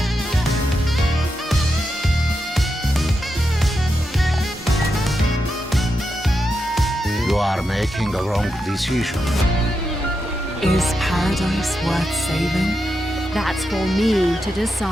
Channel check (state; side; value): normal; both; correlation 0.86